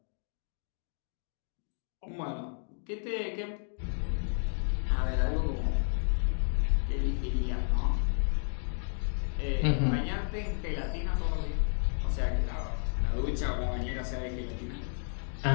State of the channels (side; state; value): right; silent; 56 dB below the other